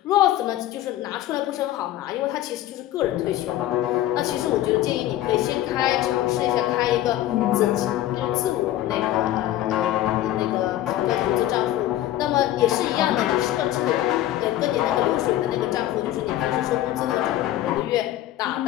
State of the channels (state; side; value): quieter; right; 13.8 dB